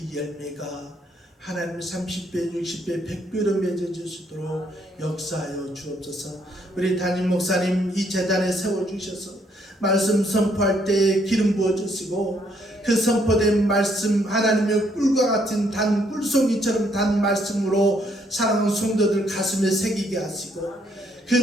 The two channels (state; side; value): normal; both; correlation 0.70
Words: 열매가 하나님 30배, 60배, 100배로 맺어질 수 있도록 역사하여 주옵소서. 우리 담임 목사님 이 재단에 세워주셔서 말씀 선포할 때에 기름 부어주시고 그 선포된 말씀 하나님의 꿀과 같은 단 꿀송이처럼 단 말씀으로 사랑하는 성도들 가슴에 새기게 하시고